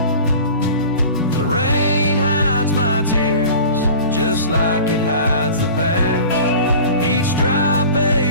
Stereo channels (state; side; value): inverted; both; correlation -0.39